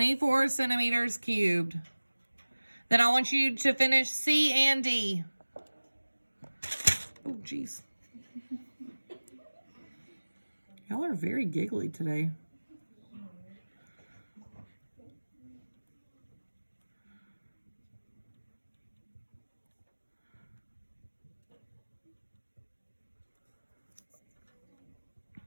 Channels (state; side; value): inverted; both; correlation -1.00